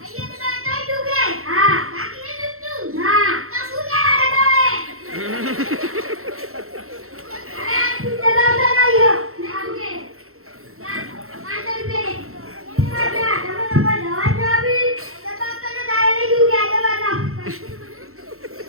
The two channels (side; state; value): left; late; 0.63 ms